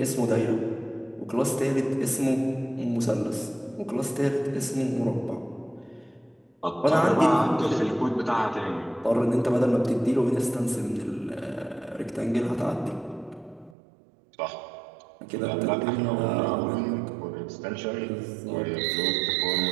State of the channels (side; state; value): left; drops out; at 13.8 s